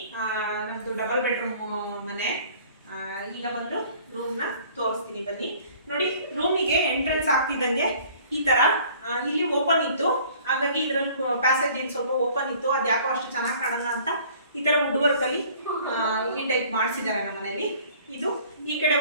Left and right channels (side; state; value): both; inverted; correlation -0.53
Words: ನಮ್ದು ಡಬಲ್ ಬೆಡ್ರೂಮ್ ಮನೆ. ಈಗ ಬಂದು ರೂಮ್ನ ತೋರಿಸ್ತೀನಿ ಬನ್ನಿ. ನೋಡಿ ರೂಮಿಗೆ ಎಂಟ್ರೆನ್ಸ್ ಆಗ್ತಿದ್ದಂಗೆ ಈ ತರ ಇಲ್ಲಿ ಓಪನ್ ಇತ್ತು, ಹಾಗಾಗಿ ಇದರಲ್ಲಿ ಪ್ಯಾಸೇಜ್ ಏನು ಸ್ವಲ್ಪ ಓಪನ್ ಇತ್ತು, ಅದು ಯಾಕೋ ಅಷ್ಟು ಚೆನ್ನಾಗಿ ಕಾಣಲ್ಲ ಅಂತ ಈ ತರ ವುಡ್ ವರ್ಕ್ ಅಲ್ಲಿ ಈ ಟೈಪ್ ಮಾಡಿಸಿದ್ದಾರೆ ನಮ್ಮ ಮನೆಯಲ್ಲಿ. ಇದು ಈ ಕಡೆ